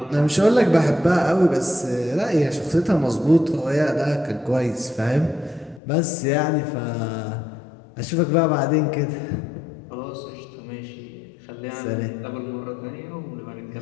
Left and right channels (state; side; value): drops out; right; at 5.8 s